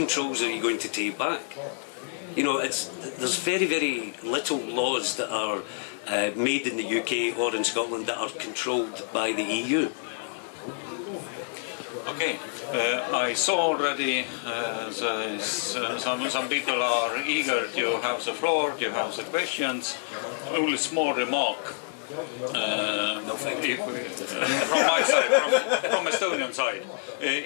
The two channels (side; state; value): right; silent; digital silence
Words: are you going to take back? You know, there's very, very little laws that are made in the UK or in Scotland that are controlled by the EU. Okay, I saw already some people are eager to have the floor, to have the questions. Only small remark from my side, from Estonian side.